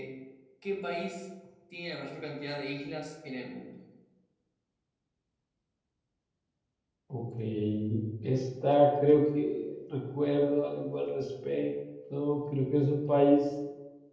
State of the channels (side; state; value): both; identical; correlation 1.00